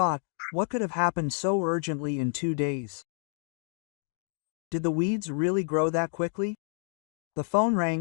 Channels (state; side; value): silent; right; 58 dB below the other